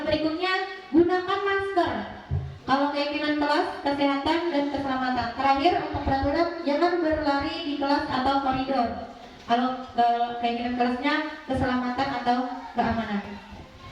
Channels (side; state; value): both; identical; correlation 1.00